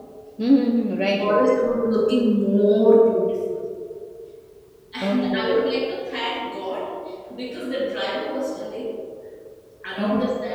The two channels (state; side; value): identical; both; correlation 1.00